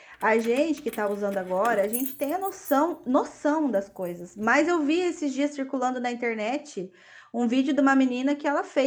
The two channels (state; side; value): identical; both; correlation 1.00